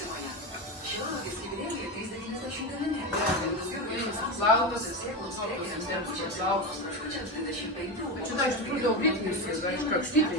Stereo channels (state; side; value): normal; both; correlation 0.17